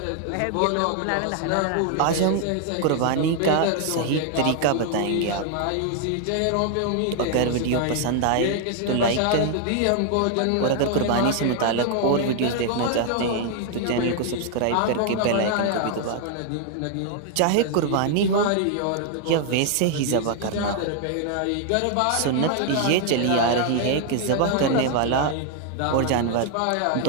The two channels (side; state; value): both; different; correlation 0.00